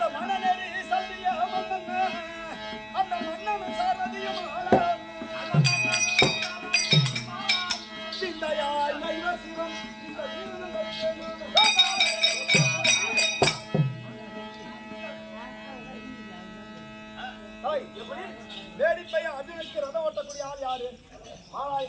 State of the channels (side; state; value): both; identical; correlation 1.00